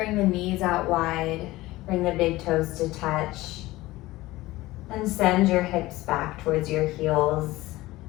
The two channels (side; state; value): right; quieter; 18.4 dB